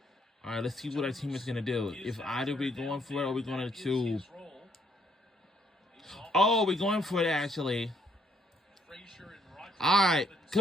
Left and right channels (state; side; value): normal; both; correlation 0.69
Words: All right, let's see what our team is going to do. If either we're going for it or we're going to... Oh, we're going for it, actually. All right,